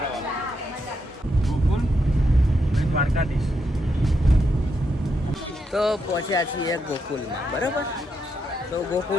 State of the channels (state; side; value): normal; both; correlation 0.81